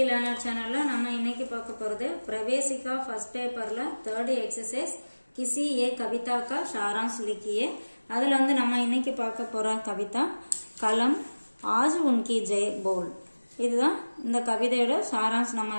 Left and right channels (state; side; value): inverted; both; correlation -1.00